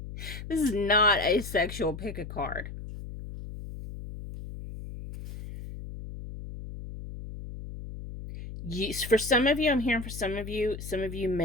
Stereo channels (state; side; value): noise; left; hum, 10 dB below the sound